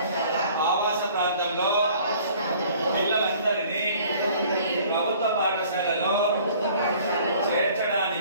ఆవాస ప్రాంతంలో పిల్లలందరినీ ప్రభుత్వ పాఠశాలలో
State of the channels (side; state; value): both; inverted; correlation -0.53